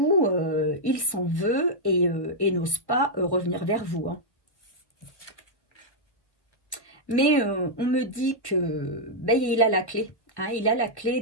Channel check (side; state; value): right; late; 1.1 ms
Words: il s'en veut et n'ose pas revenir vers vous. Hein. Mais on me dit que ben, il a la clé. Hein, il a la